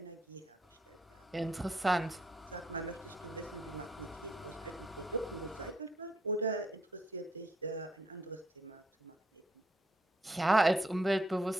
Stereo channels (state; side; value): normal; both; correlation 0.72